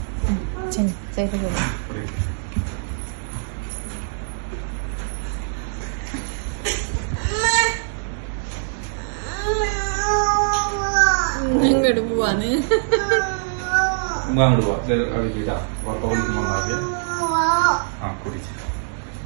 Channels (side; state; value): left; silent; digital silence